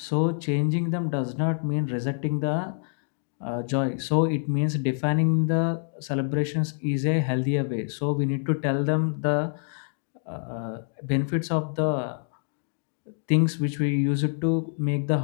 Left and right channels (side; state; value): right; silent; digital silence